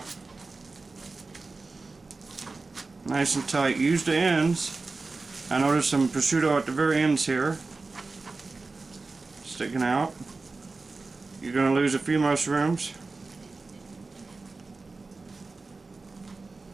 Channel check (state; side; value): quieter; left; 3.8 dB